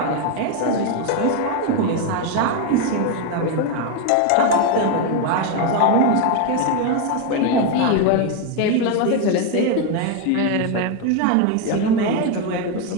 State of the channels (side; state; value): both; different; correlation 0.02